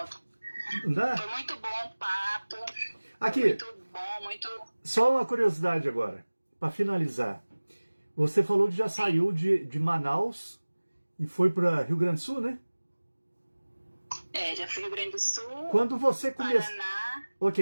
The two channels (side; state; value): both; inverted; correlation -1.00